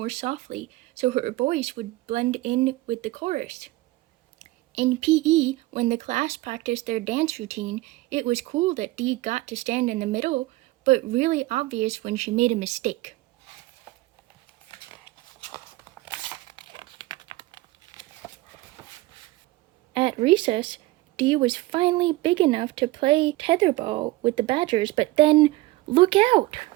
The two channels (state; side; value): quieter; left; 19.0 dB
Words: softly so her voice would blend in with the chorus. In PE, when the class practiced their dance routine, it was cool that Dee got to stand in the middle, but really obvious when she made a mistake. At recess, Dee was finally big enough to play tetherball with the Badgers, but then, look out!